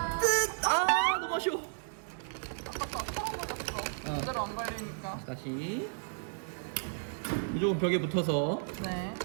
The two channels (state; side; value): silent; left; 56 dB below the other